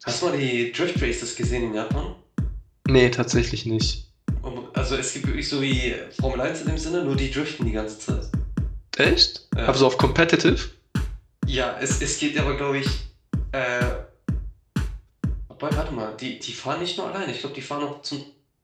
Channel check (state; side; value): identical; both; correlation 1.00